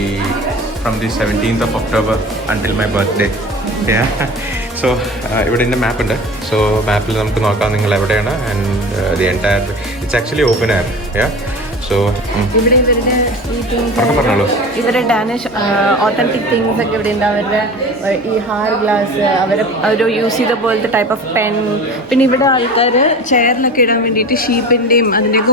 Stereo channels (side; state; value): both; normal; correlation 0.36